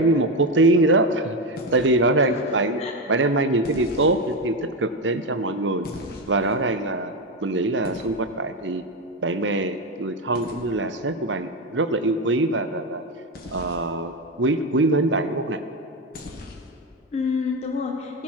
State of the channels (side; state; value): both; normal; correlation 0.12